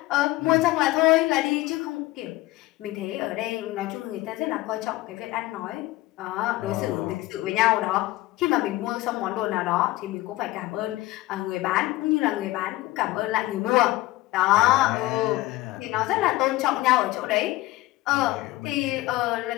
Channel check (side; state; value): right; quieter; 18.4 dB